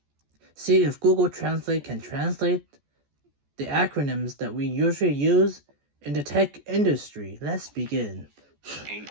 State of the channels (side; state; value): left; late; 14 ms